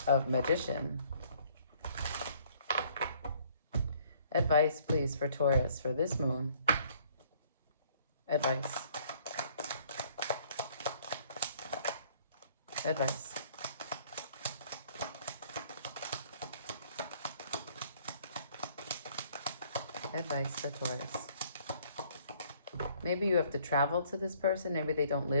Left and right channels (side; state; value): both; inverted; correlation -0.61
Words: of Magician. Advice, please, for Taurus for this moon. Advice. Advice. Advice for Taurus. Maybe you have to travel to this person. Maybe they don't